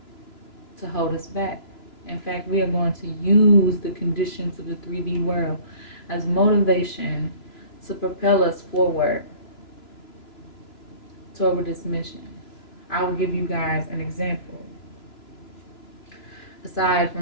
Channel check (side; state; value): right; late; 2.9 ms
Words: to hold us back. In fact, we are going to use the conditions of the 3D world as motivation to propel us forward toward this mission. I will give you guys an example. Aside